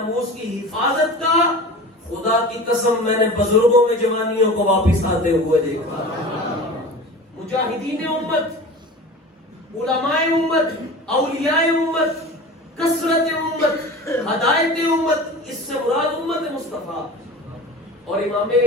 کی حفاظت کا, خدا کی قسم میں نے بزرگوں میں جوانیوں کو واپس آتے ہوئے دیکھا. مجاہدین امت, علماء امت, اولیاء امت, کثرت امت, ہدایت امت, اس سے مراد امت مصطفیٰ. اور امام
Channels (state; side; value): normal; both; correlation 0.35